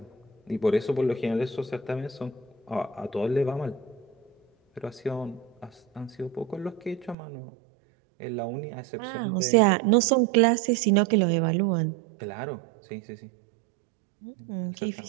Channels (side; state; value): left; drops out; at 7.2 s